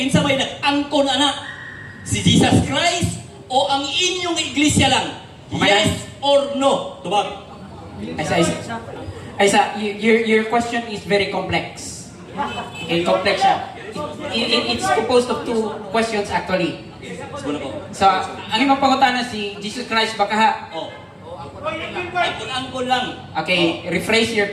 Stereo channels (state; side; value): identical; both; correlation 1.00